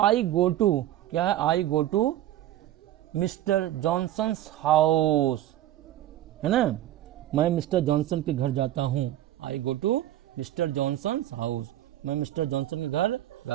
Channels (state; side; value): quieter; left; 13.4 dB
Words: गो टू, क्या है, I go to mister Johnson's house, है ना, मैं मिस्टर जॉनसन के घर जाता हूँ। I go to mister Johnson's house, मैं मिस्टर जॉनसन के घर